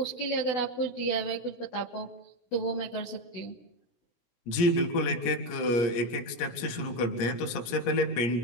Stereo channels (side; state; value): right; late; 17 ms